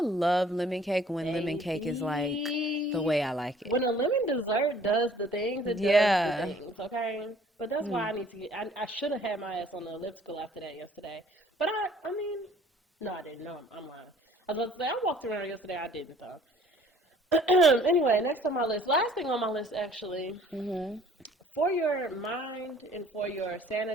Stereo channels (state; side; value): normal; both; correlation 0.55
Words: love lemon cake when baby, lemon cake is like the way I like it. When a lemon dessert does the things, it does the things, okay? But that's why I need to get, I should have had my ass on the elliptical after that yesterday. But I mean, no, I didn't. No, I'm lying. I was about to say, I walked around yesterday. I didn't, though. Anyway, next on my list. Last thing on my list, actually. For your mind and for your